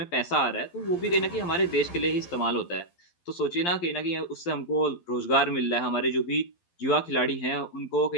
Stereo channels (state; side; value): late; right; 12 ms